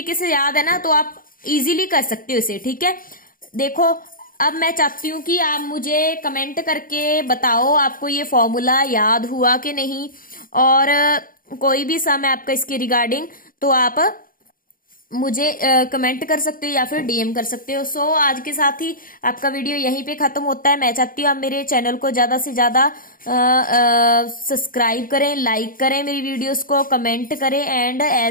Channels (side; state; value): right; late; 0.41 ms